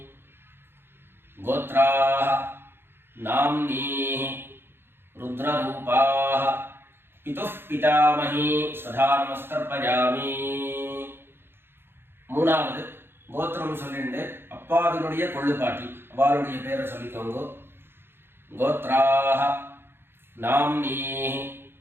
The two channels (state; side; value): late; left; 0.11 ms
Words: गोत्राः नाम्नीः रुद्ररूपाः पितुः पितामही स्वधा नमस्तर्पयामि மூணாவது கோத்திரம் சொல்லிட்டு அப்பாவினுடைய கொள்ளுப்பாட்டி அவளுடைய பேரை சொல்லிக்கோங்க கோத்ராஹ நாம்னீஹ